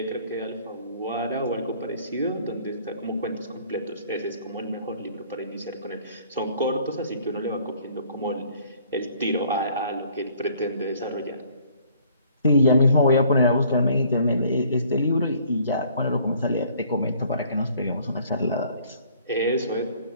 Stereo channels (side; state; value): both; inverted; correlation -0.58